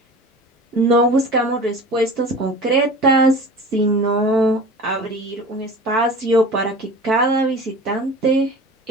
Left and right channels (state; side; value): normal; both; correlation 0.37